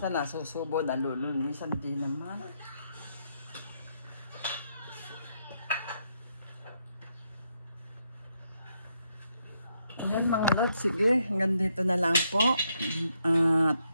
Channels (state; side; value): inverted; both; correlation -0.76